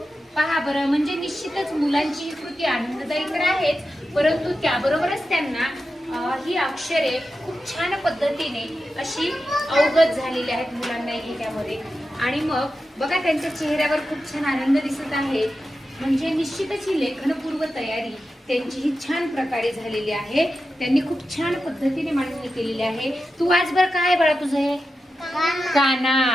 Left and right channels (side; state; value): both; normal; correlation 0.91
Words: पहा बरं, म्हणजे निश्चितच मुलांची ही कृती आनंददायी तर आहेच, परंतु त्याबरोबरच त्यांना ही अक्षरे खूप छान पद्धतीने अशी अवगत झालेली आहेत मुलांना ह्याच्यामध्ये. आणि मग बघा त्यांच्या चेहऱ्यावर खूप छान आनंद दिसत आहे. म्हणजे निश्चितच ही लेखनपूर्व तयारी त्यांची ही छान प्रकारे झालेली आहे. त्यांनी खूप छान पद्धतीने मांडणी केलेली आहे. तू आज बरं काय बाळा तुझं हे?